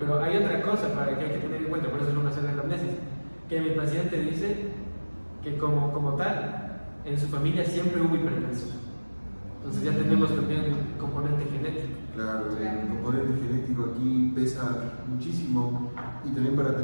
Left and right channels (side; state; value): both; inverted; correlation -1.00